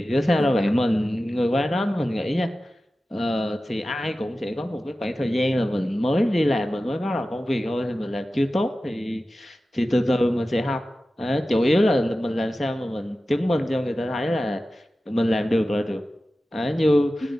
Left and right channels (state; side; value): normal; both; correlation 0.95